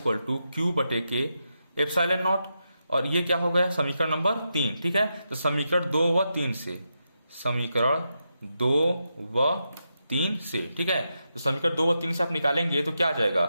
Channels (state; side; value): inverted; both; correlation -0.86